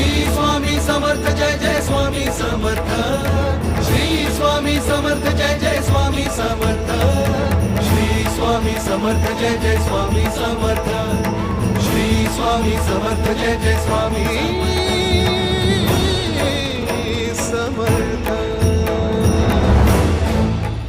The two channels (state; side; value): identical; both; correlation 1.00